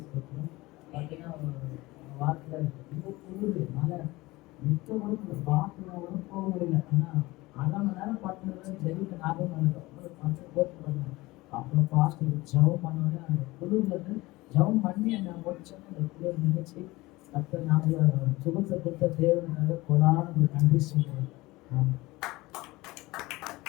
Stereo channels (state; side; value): quieter; right; 20.5 dB